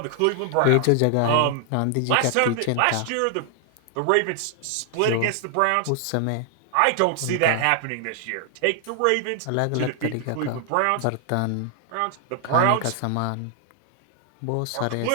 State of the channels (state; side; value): different; both; correlation 0.00